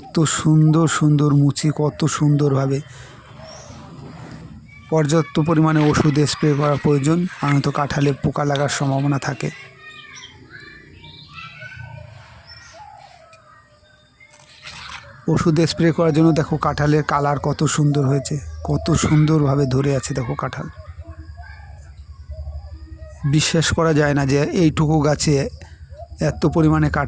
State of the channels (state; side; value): identical; both; correlation 1.00